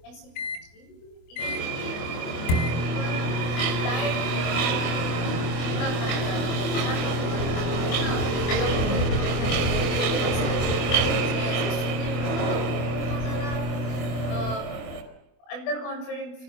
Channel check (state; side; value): late; right; 24 ms